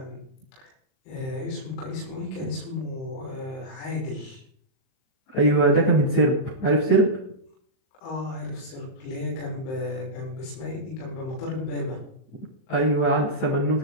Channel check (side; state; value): right; late; 38 ms